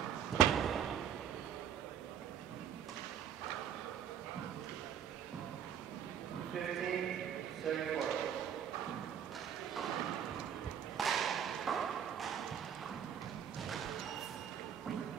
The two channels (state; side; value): quieter; left; 8.8 dB